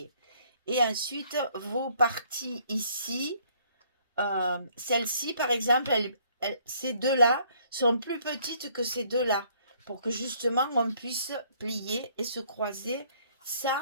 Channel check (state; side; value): inverted; both; correlation -0.63